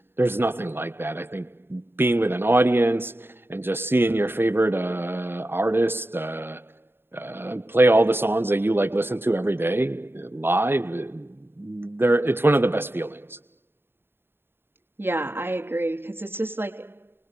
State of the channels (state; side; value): late; left; 0.11 ms